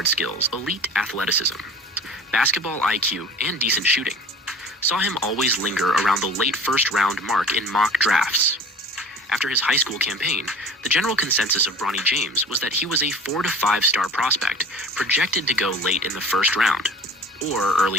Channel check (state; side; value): normal; both; correlation 0.42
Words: skills, elite athleticism, basketball IQ, and decent shooting saw him always linger around the late first-round mark in mock drafts. After his high school campaign, the general consensus of Bronny James was that he was a 4 to 5 star prospect, projected to go late in the first round, or